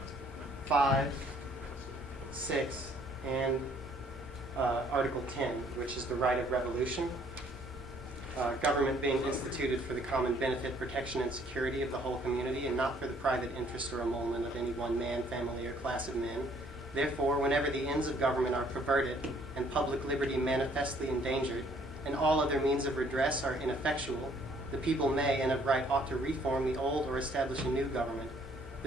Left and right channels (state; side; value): normal; both; correlation 0.62